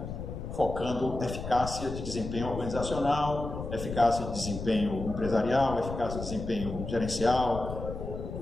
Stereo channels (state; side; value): noise; left; rumble, 7 dB below the sound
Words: focando eficácia de desempenho organizacional, eficácia de desempenho empresarial, eficácia de desempenho gerencial,